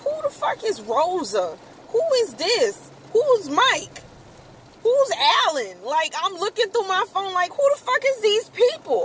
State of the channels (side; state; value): both; identical; correlation 1.00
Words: the fuck is Rosa? Who is this? Who's Mike? Who's Alan? Like, I'm looking through my phone like, who the fuck is these